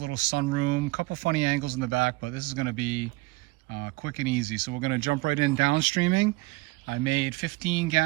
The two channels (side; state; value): left; quieter; 23.1 dB